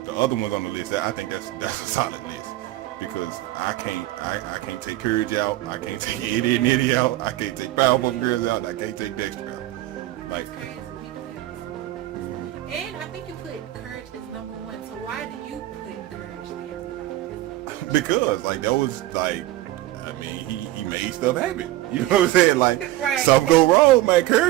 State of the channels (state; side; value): quieter; left; 16.1 dB